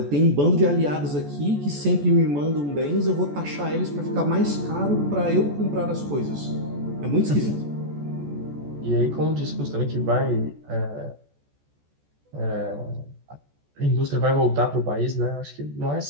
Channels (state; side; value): late; left; 14 ms